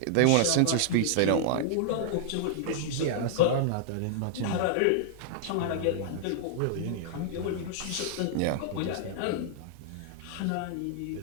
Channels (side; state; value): both; different; correlation -0.01